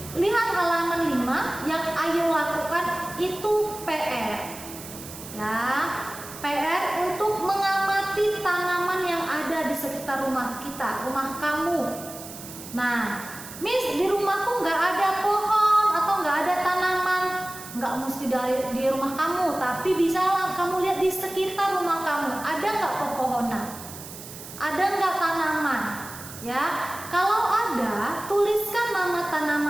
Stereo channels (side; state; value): right; noise; hiss, 14 dB below the sound